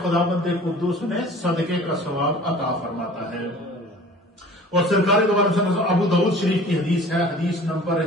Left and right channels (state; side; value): normal; both; correlation 0.45